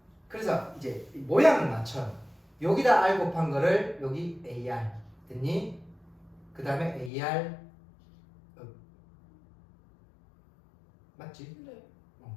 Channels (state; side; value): drops out; right; at 7.1 s